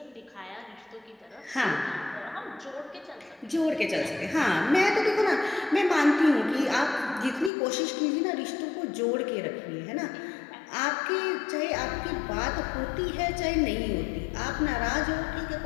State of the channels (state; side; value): drops out; right; at 7.5 s